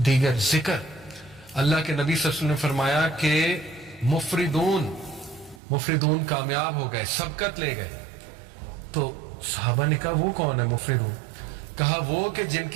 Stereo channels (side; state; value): left; drops out; at 5.6 s